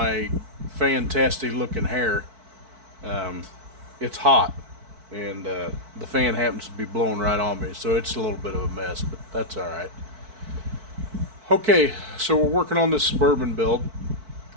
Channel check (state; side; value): late; left; 4.5 ms